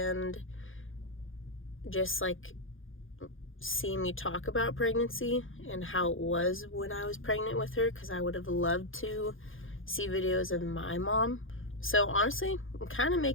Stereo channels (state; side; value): late; right; 0.58 ms